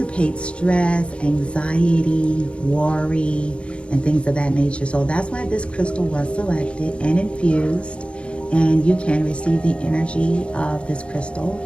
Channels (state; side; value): late; right; 0.058 ms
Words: stress, anxiety, worry, and things of that nature. So that's why this crystal was selected and infused. And you can receive the energy of this crystal